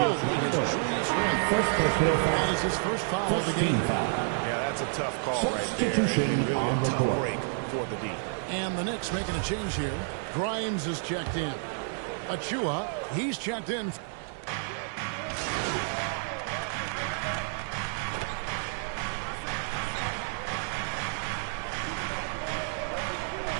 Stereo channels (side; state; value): left; silent; 58 dB below the other